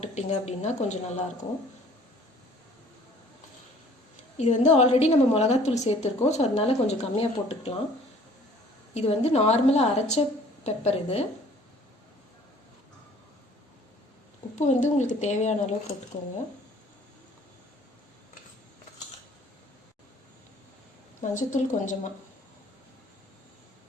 அப்படின்னா கொஞ்சம் நல்லாயிருக்கும். இது வந்து ஆல்ரெடி நம்ம மிளகாத்தூள் சேர்த்துருக்கோம், ஸோ அதனால கொஞ்சம் கம்மியாக போட்டுக்கலாம். இது வந்து நார்மலாக அரைச்ச பெப்பர். இது உப்பு வந்து உங்களுக்கு தேவையான அளவு போட்டுக்கோங்க. மஞ்சத்தூள் கொஞ்சமாக.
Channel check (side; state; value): both; normal; correlation 0.54